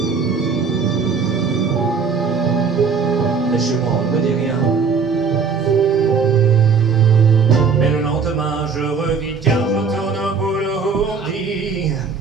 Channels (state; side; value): quieter; left; 5.6 dB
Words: Mais chez moi on ne me dit rien. Mais le lendemain je revis car je tourne au boulot, on dit